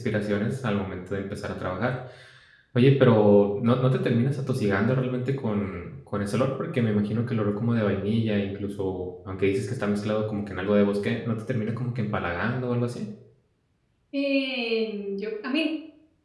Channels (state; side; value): identical; both; correlation 1.00